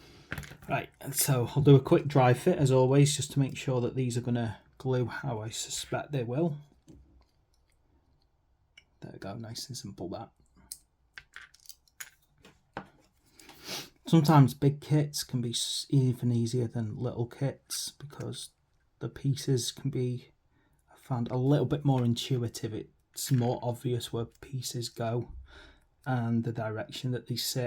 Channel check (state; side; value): identical; both; correlation 1.00